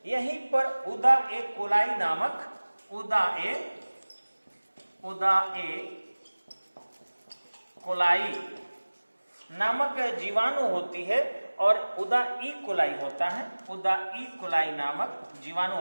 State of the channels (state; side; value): inverted; both; correlation -1.00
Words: यहीं पर उदा ए कोलाई नामक उदा ए कोलाई नामक जीवाणु होती है और उदा ई कोलाई होता है, उदा ई कोलाई नामक जीवाणु